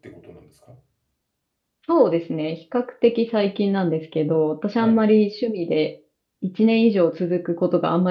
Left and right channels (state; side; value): identical; both; correlation 1.00